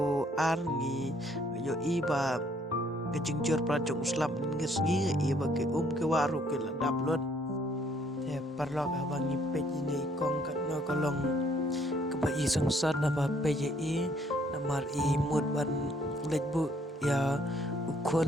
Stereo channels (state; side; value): normal; both; correlation 0.65